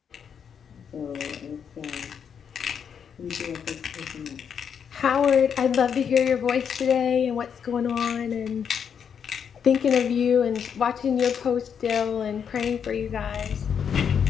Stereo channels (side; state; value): right; quieter; 7.5 dB